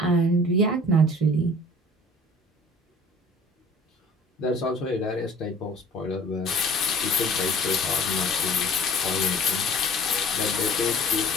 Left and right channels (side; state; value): both; normal; correlation 0.48